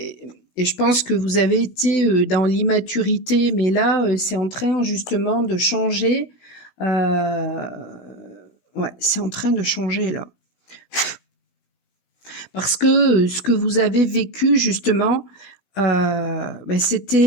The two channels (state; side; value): late; right; 16 ms